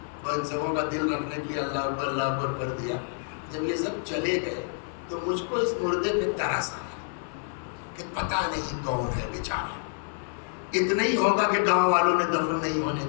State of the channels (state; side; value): silent; right; 56 dB below the other